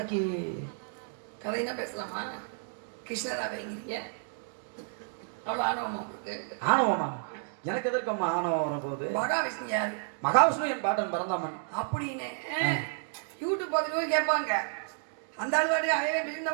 கதைனா பேசலாமா? கிருஷ்ணரா வைங்கிறீங்க, அவ்வளோ ஆணவமா உங்களுக்கு? ஆணவமா? எனக்கு எதற்கம்மா ஆணவம் வரப்போகுது? மகாவிஷ்ணு யாரு? மகாவிஷ்ணு என் பாட்டன் பரந்தாமன் அப்படின்னு யூடியூப் பார்த்துட்டு கேட்பாங்க. அந்த ஆள் வாடி அவன்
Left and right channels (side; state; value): left; silent; 57 dB below the other